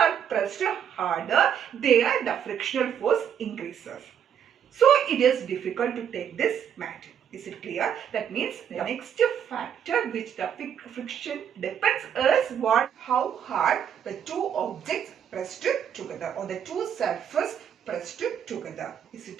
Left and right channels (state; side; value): quieter; left; 8.6 dB